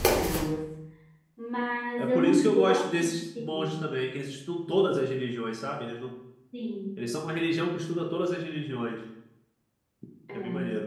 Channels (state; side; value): identical; both; correlation 1.00